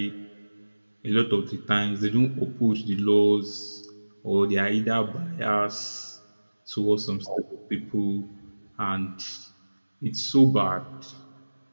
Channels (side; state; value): both; inverted; correlation -1.00